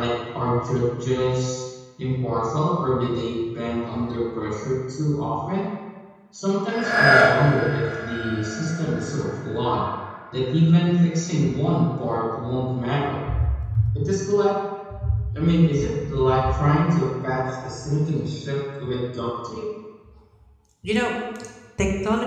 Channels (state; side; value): identical; both; correlation 1.00